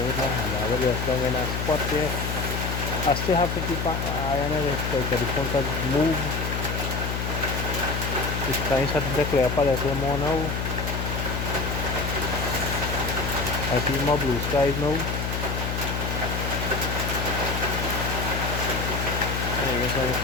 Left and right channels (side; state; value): left; noise; hum, 2 dB below the sound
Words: with my hand. I have it just in a spot there. I still have to keep an eye on it because the phone can move. The sky is starting to clear up a little more now. I see more blue skies now. I guess I'm